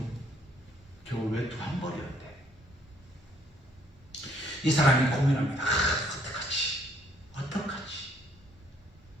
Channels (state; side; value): normal; both; correlation 0.66